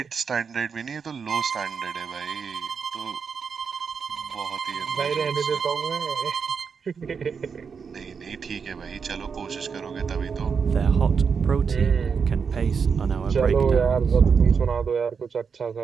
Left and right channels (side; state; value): left; quieter; 6.0 dB